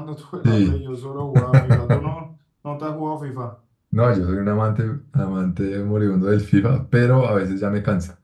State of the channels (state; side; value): identical; both; correlation 1.00